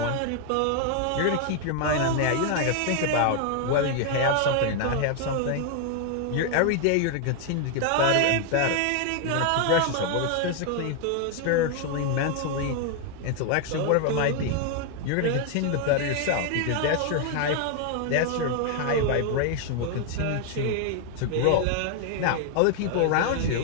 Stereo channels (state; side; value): different; both; correlation 0.00